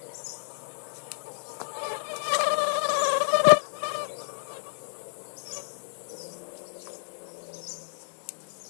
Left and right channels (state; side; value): silent; right; digital silence